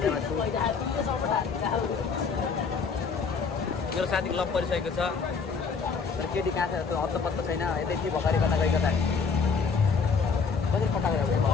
छु मेरो साथी क्लब परिसकेको छ तर केटी कहाँ छ त्यो हत्त पत्तो छैन यतै भर्खरै कता गएको त कसरी पटाएको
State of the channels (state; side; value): quieter; right; 5.4 dB